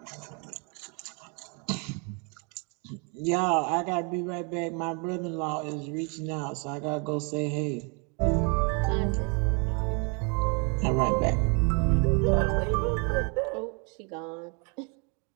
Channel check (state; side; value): quieter; left; 34.7 dB